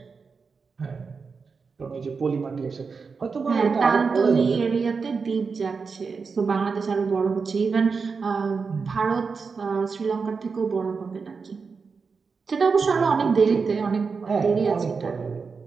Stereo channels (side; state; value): left; quieter; 5.0 dB